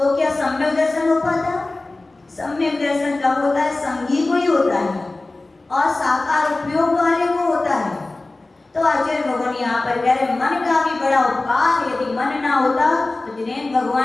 क्या सम्यक दर्शन हो पाता? सम्यक दर्शन कब होता है? संगी को ही होता है और साकार उपयोग वाले को होता है। तो आचार्य भगवान यहाँ पर कह रहे मन का भी बड़ा उपकार। यदि मन ना होता तो जिनेंद्र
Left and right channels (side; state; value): right; quieter; 3.1 dB